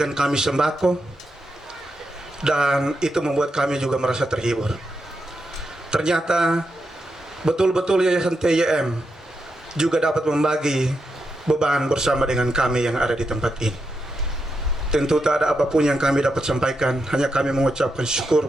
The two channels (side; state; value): both; normal; correlation 0.85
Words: kami sembako, dan itu membuat kami juga merasa terhibur. Ternyata betul-betul Yayasan TYM juga dapat membagi beban bersama dengan kami yang ada di tempat ini. Tentu tak ada apapun yang kami dapat sampaikan, hanya kami mengucapkan syukur